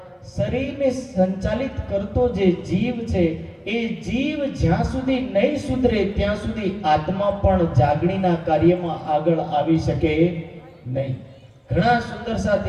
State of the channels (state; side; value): identical; both; correlation 1.00